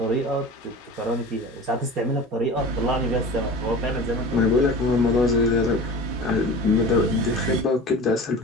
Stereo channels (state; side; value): normal; both; correlation 0.35